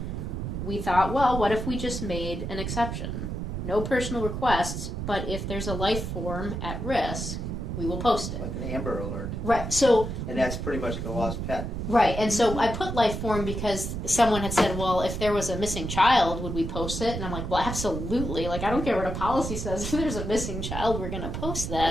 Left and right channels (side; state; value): right; noise; rumble, 4 dB below the sound